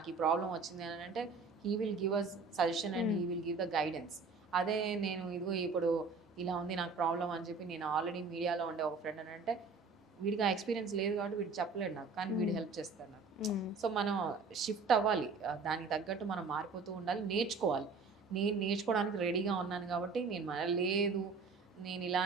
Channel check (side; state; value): left; quieter; 4.5 dB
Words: ఈ ప్రాబ్లం వచ్చింది అని అంటే he will give us suggestion and he will give the guidance. అదే నేను ఇదిగో ఇప్పుడు ఇలా ఉంది నాకు ప్రాబ్లం అని చెప్పి నేను ఆల్రెడీ మీడియాలో ఉండే ఒక ఫ్రెండ్ అని అంటే వీడికి ఆ ఎక్స్పీరియన్స్ లేదు కాబట్టి వీడు చెప్పలేడు నాకు, కానీ వీడు హెల్ప్ చేస్తాడు నాకు. సో మనం షిఫ్ట్ అవ్వాలి, దానికి తగ్గట్టు మనం మారిపోతూ ఉండాలి, నేర్చుకోవాలి. నేను నేర్చుకోవడానికి రెడీగా ఉన్నాను కాబట్టి నేను లేదు నేను